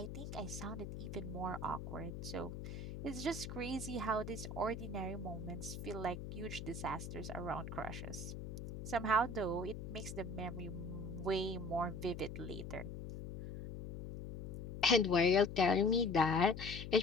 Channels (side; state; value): left; noise; hum, 8 dB below the sound